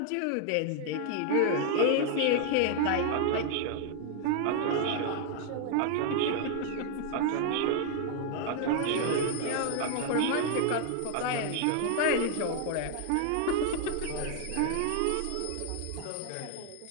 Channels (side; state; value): both; different; correlation 0.00